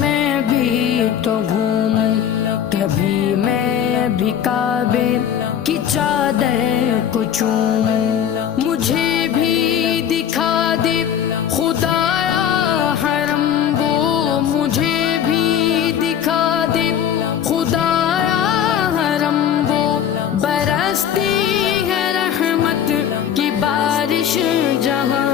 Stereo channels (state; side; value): quieter; right; 9.1 dB